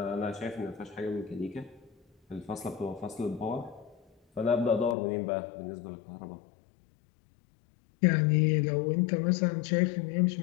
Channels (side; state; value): right; drops out; at 5.0 s